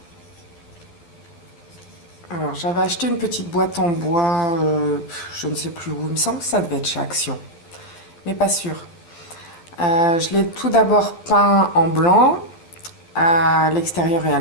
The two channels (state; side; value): late; right; 12 ms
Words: Alors j'avais acheté une petite boîte en bois, je ne sais plus où, il me semble que ça devait être chez Action, mais pas sûr. Je l'ai tout d'abord peint en blanc, à l'extérieur et à